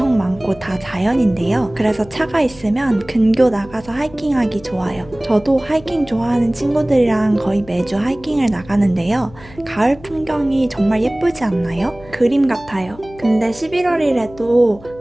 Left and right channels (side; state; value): left; noise; hum, 21 dB below the sound